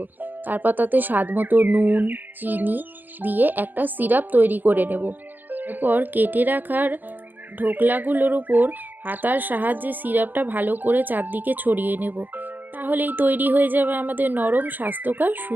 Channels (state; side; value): late; left; 0.087 ms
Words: তারপর তাতে স্বাদ মতো নুন, চিনি দিয়ে একটা সিরাপ তৈরি করে নেব। এরপর কেটে রাখার ঢোকলাগুলোর উপর হাতার সাহায্যে সিরাপটা ভালো করে চারদিকে ছড়িয়ে নেব। তাহলেই তৈরি হয়ে যাবে আমাদের নরম স্বাস্থ্যকর